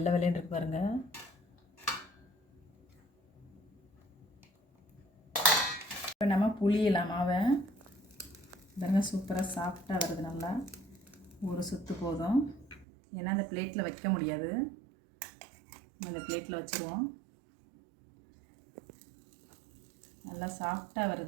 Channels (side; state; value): left; drops out; at 12.9 s